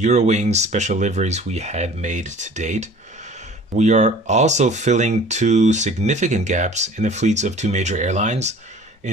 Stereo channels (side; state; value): both; normal; correlation 0.46